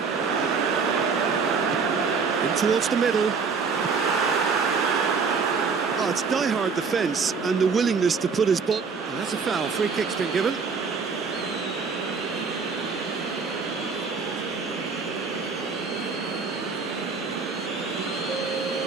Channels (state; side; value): quieter; left; 5.2 dB